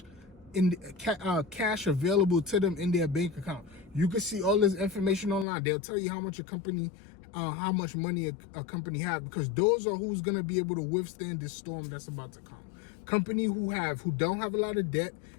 cash available to them in their bank account. You can see all this information online. They'll tell you how much how much money a company have, because those are who's gonna be able to withstand this storm that's about to come. Company who don't have a lot of debt,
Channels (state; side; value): drops out; right; at 5.5 s